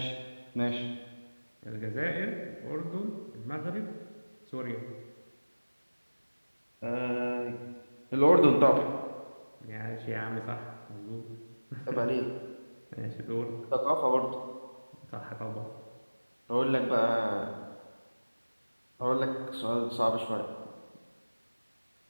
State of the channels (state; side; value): inverted; both; correlation -1.00